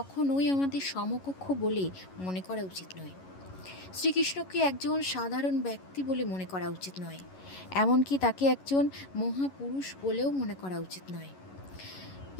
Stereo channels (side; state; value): right; late; 11 ms